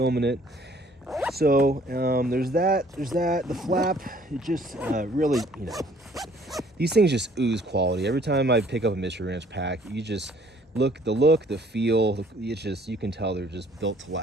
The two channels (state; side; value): normal; both; correlation 0.58